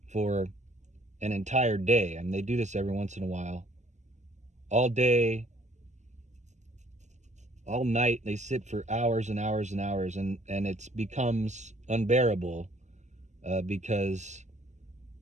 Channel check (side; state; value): left; late; 0.34 ms